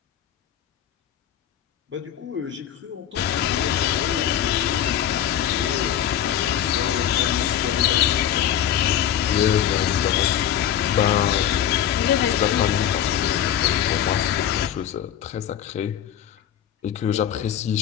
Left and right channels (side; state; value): right; quieter; 10.3 dB